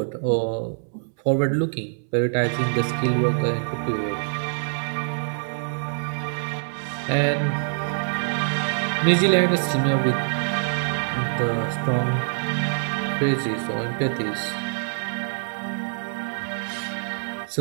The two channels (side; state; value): left; silent; 62 dB below the other